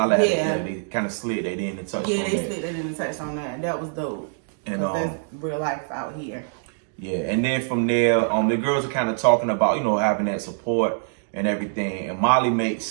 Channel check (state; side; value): silent; left; digital silence